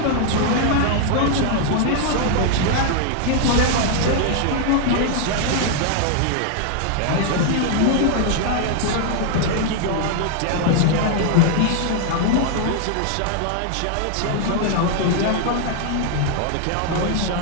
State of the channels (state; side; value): different; both; correlation 0.00